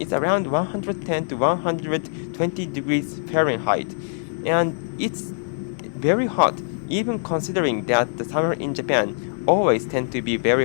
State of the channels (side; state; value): right; silent; 63 dB below the other